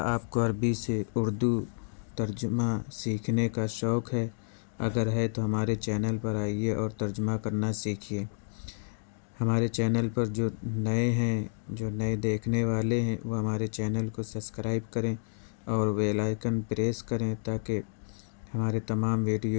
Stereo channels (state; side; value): silent; right; digital silence